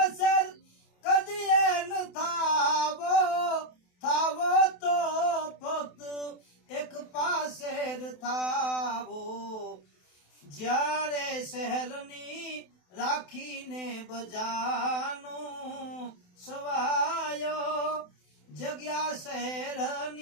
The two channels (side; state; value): right; late; 28 ms